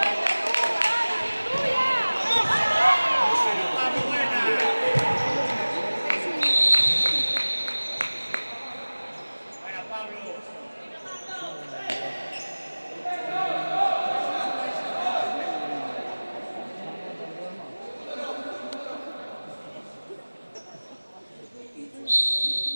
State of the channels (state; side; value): inverted; both; correlation -1.00